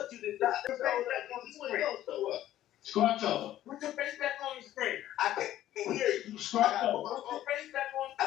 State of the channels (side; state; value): right; quieter; 13.1 dB